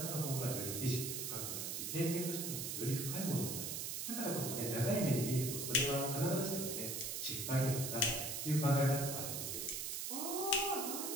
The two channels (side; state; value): right; noise; hiss, 3 dB below the sound